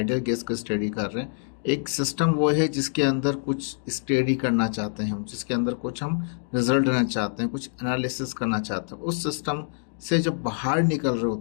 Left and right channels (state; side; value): silent; right; digital silence